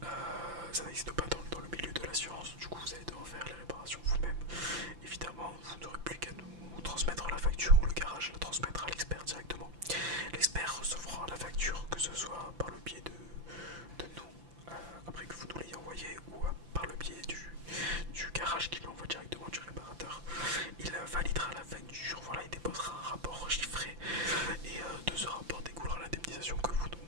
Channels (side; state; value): left; late; 5.8 ms